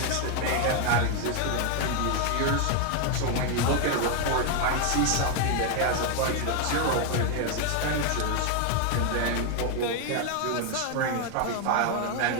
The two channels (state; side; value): different; both; correlation 0.01